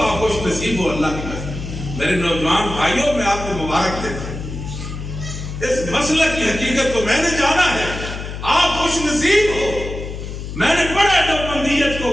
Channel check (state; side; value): noise; left; hum, 8 dB below the sound